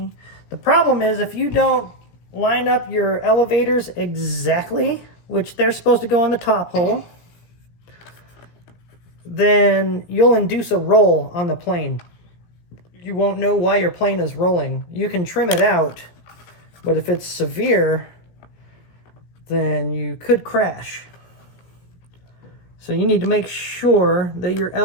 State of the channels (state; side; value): late; right; 17 ms